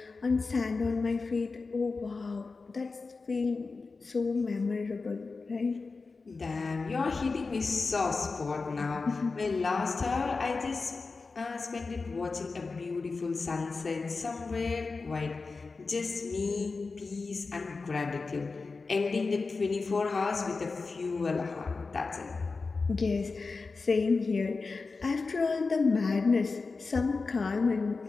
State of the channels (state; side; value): quieter; right; 4.1 dB